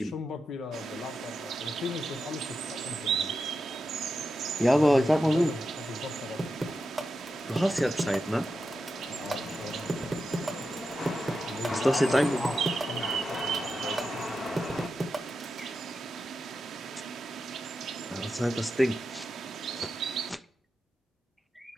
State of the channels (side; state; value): both; normal; correlation 0.89